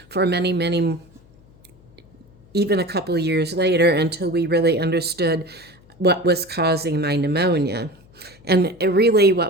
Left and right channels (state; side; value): noise; left; hum, 28 dB below the sound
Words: for many, many, even a couple of years later, until we really understood what was causing my pneumonia. And really